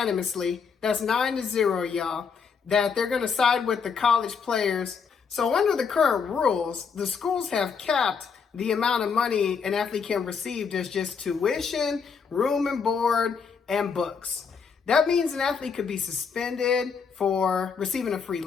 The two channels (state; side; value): quieter; right; 6.0 dB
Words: that's 9-0, y'all, that they're going to side with the college players. So under the current rules, the schools have capped the amount of money an athlete can receive as just tuition, room and board, and books. That means an athlete could be suspended for receiving a free